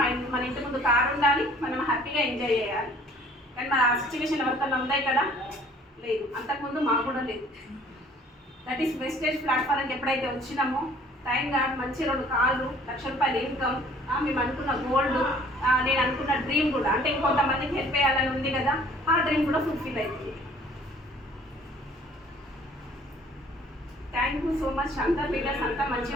ఇంటి ముందు కారు ఉండాలి, మనం హ్యాపీగా ఎంజాయ్ చేయాలి. కానీ మన ఆ సిచ్యువేషన్ ఎవరికన్నా ఉన్నాయి కదా? లేదు. అంతకుముందు మాకు కూడా లేదు. దట్ ఈస్ వెస్టేజ్ ప్లాట్ఫారంకి ఎప్పుడైతే వచ్చినామో టైం కాదు, మంచి 2 కార్లు, ₹1,00,000 ఇన్కమ్, మేము అనుకున్న గోల్డ్, నేను అనుకున్న డ్రీమ్ కూడా, అంటే ఇంకొంతమందికి హెల్ప్ చేయాలని ఉంది కదా, ఆ డ్రీమ్ కూడా ఫుల్ఫిల్ అవుతుంది. Thank you so much. అంతా లీడర్స్ అంతా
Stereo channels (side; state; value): both; normal; correlation 0.55